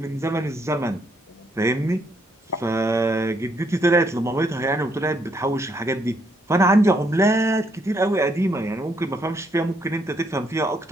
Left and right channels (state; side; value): normal; both; correlation 0.73